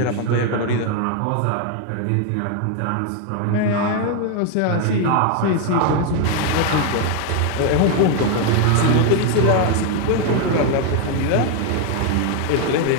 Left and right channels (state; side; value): different; both; correlation 0.01